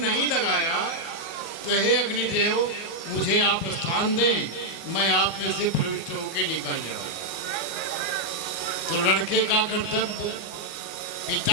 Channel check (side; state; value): right; late; 24 ms